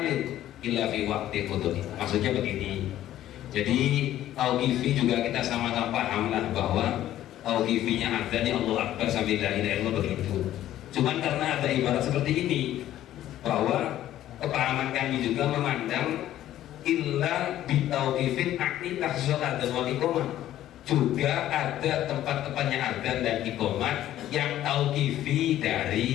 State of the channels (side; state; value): right; quieter; 12.9 dB